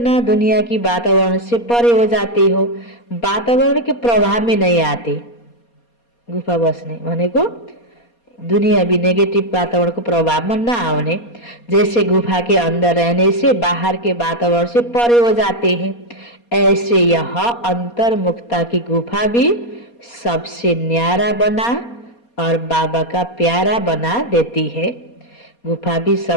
दुनिया की वातावरण से परे हो जाते हो। वातावरण के प्रभाव में नहीं आते। गुफा बस्ने भनेको दुनिया भी नेगेटिव वातावरण को प्रभाव में न आने। जैसे गुफा के अंदर रहने से बाहर के वातावरण से परे हो जाते हैं, ऐसे यह अंतर्मुक्ता की गुफा भी सबसे न्यारा बना और बाबा का प्यारा बना देती है। गुफा भी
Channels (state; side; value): late; right; 4.2 ms